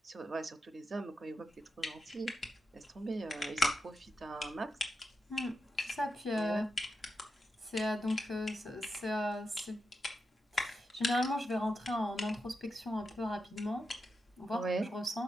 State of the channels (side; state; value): both; normal; correlation 0.87